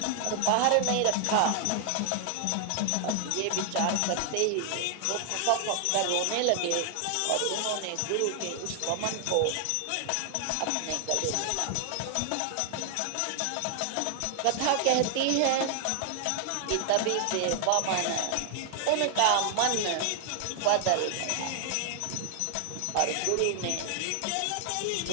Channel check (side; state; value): both; different; correlation 0.00